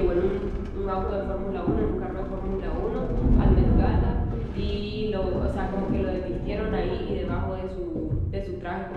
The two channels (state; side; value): identical; both; correlation 1.00